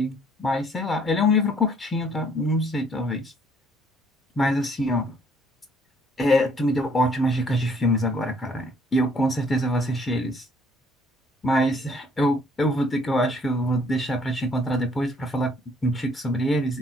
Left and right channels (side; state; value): both; normal; correlation 0.62